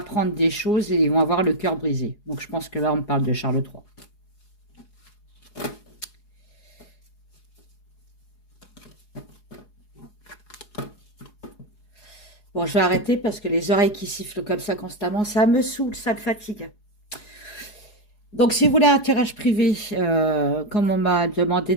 des choses et ils vont avoir le cœur brisé. Donc je pense que là, on parle de Charles III. Bon, je vais arrêter parce que les oreilles qui sifflent comme ça constamment, ça me saoule, ça me fatigue. Donc, si vous voulez un tirage privé, comme on m'a demandé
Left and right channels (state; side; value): late; right; 4.8 ms